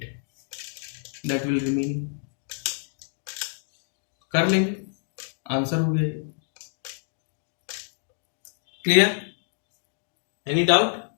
that will remain. कर लेंगे, answer हो गया. Clear, any doubt?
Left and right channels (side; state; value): right; silent; digital silence